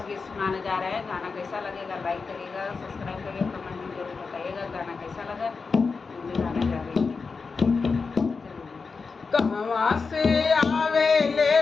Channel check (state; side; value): quieter; right; 4.7 dB